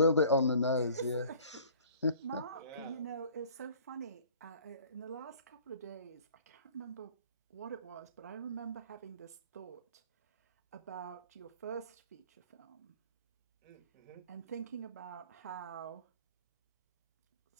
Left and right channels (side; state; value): both; inverted; correlation -0.51